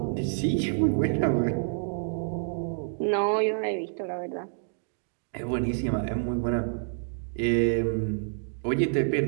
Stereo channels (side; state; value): left; silent; digital silence